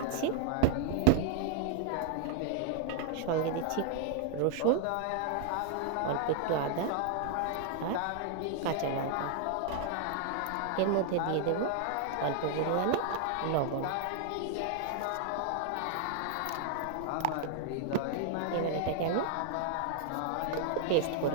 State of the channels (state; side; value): different; both; correlation 0.00